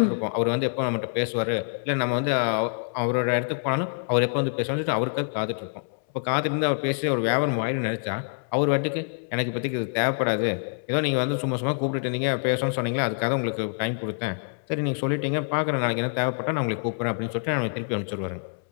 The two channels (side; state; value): right; silent; 61 dB below the other